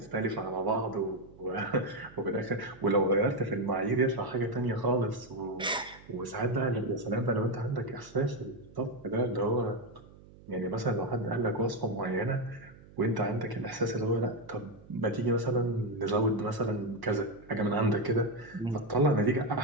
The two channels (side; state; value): right; noise; hum, 22 dB below the sound